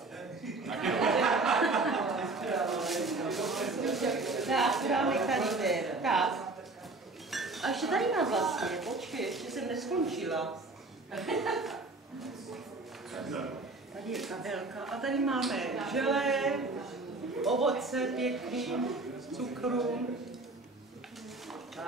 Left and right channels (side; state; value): left; quieter; 3.3 dB